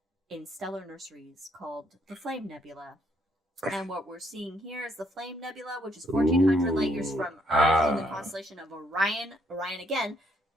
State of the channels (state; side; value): normal; both; correlation 0.71